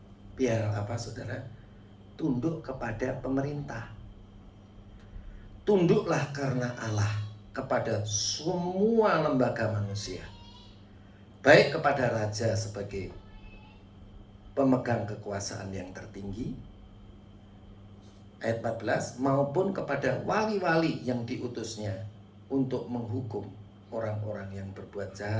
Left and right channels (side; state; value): both; identical; correlation 1.00